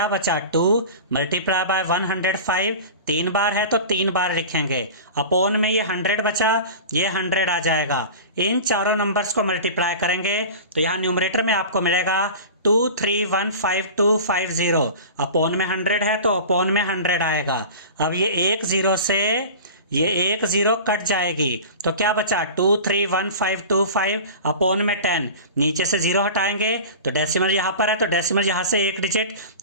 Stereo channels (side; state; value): both; inverted; correlation -0.35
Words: बचा 2 मल्टीप्लाई बाय 105 3 बार है तो 3 बार लिखेंगे अपॉन में ये 100 बचा, ये 100 आ जाएगा। इन चारों नंबर्स को मल्टीप्लाई करेंगे तो यहाँ न्यूमरेटर में आपको मिलेगा 2315250 अपॉन में 100 है तो अपॉन में 100 आएगा। अब ये 1 0 से ये 1 0 कट जाएगी तो क्या बचा 23152 अपॉन में 10, नीचे से 0 हटाएंगे तो डेसिमल यहाँ पर है तो डेसिमल यहाँ से एक डिजिट